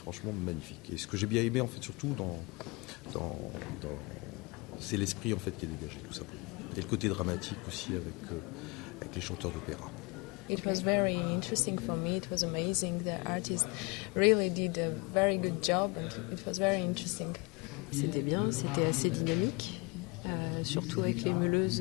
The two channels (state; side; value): quieter; right; 27.6 dB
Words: magnifique. Et ce que j'ai bien aimé en fait surtout c'est l'esprit en fait qui est dégagé tout simplement. Et le côté dramatique aussi avec les chanteurs d'opéra. It was very interesting for me. It was amazing. The artist really did a very good job and it was very interesting. C'était bien, c'était assez dynamique. Surtout avec les meuleuses